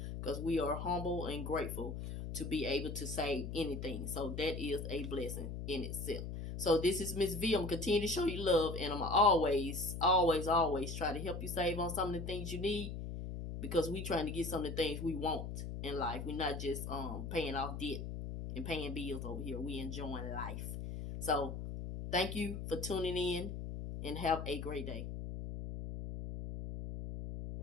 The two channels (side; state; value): left; noise; hum, 6 dB below the sound